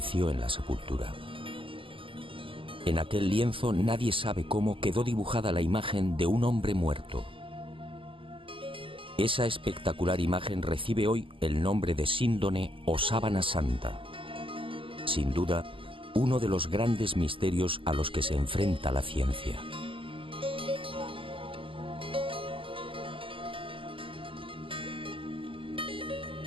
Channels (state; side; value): late; left; 0.25 ms